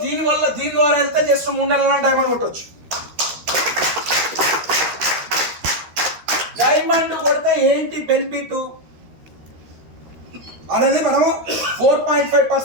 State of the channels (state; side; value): late; left; 13 ms